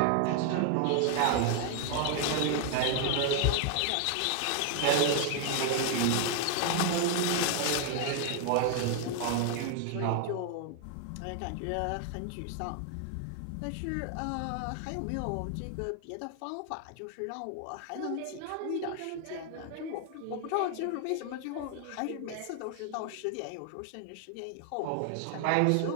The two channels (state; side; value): different; both; correlation 0.00